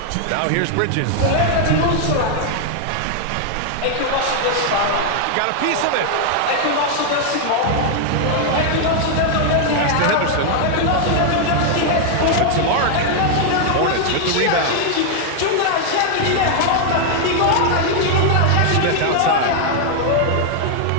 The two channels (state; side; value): different; both; correlation 0.00